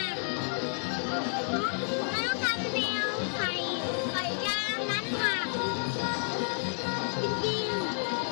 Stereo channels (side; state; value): right; silent; 57 dB below the other